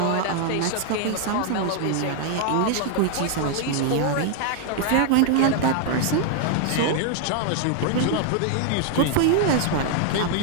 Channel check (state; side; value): different; both; correlation 0.00